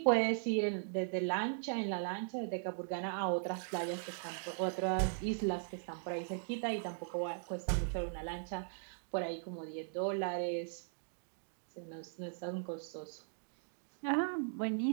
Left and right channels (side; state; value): left; silent; digital silence